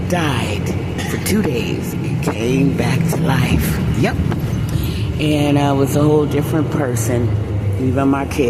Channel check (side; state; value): both; identical; correlation 1.00